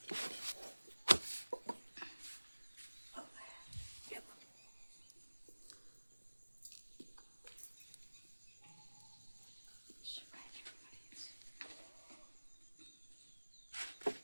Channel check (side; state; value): both; inverted; correlation -1.00